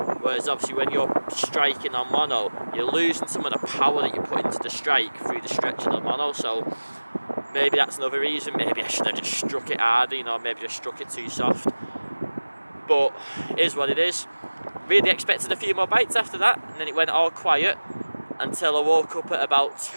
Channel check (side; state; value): both; inverted; correlation -1.00